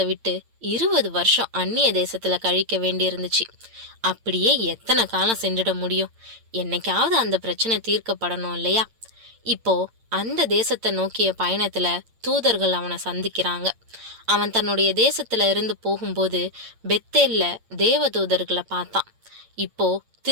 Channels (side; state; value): left; late; 8.8 ms